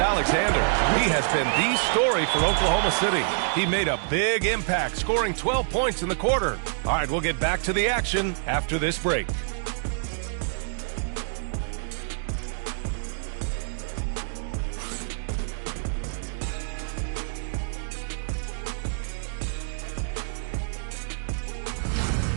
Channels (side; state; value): left; silent; digital silence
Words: He has been the story for Oklahoma City. He made a big impact, scoring 12 points in the quarter. All right, we'll get back to the action after this break.